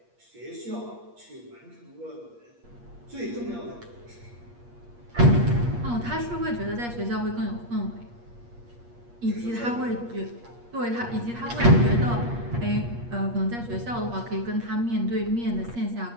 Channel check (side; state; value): left; late; 8.5 ms